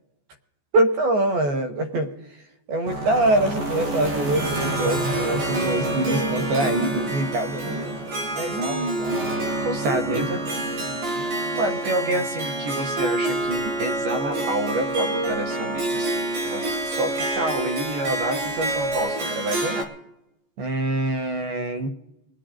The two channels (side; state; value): left; late; 14 ms